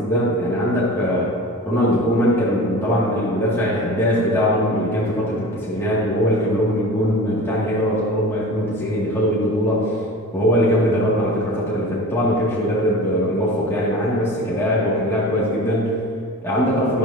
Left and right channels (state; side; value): normal; both; correlation 0.36